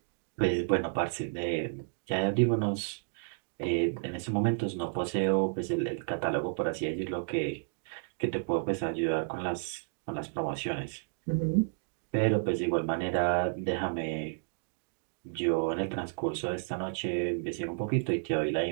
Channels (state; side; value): silent; left; digital silence